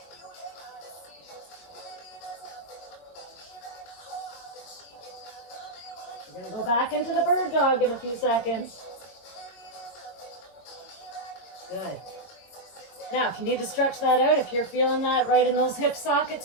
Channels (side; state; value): right; late; 21 ms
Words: We're going to go back into the bird dog in a few seconds. Good. Now, if you need to stretch that out, if you're feeling that right in those hip sockets